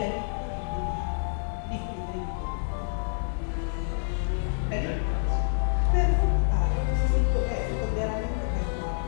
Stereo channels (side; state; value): right; silent; digital silence